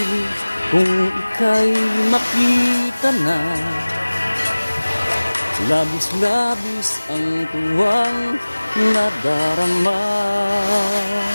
kung ika'y makita na, labis-labis ang tuwang nadarama.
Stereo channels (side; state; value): both; inverted; correlation -1.00